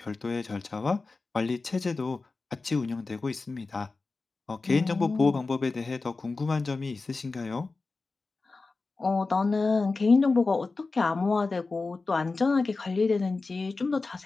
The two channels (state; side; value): quieter; right; 3.8 dB